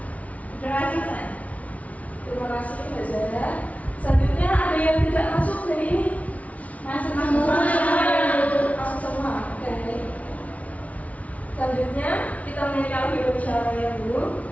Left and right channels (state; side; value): late; right; 0.068 ms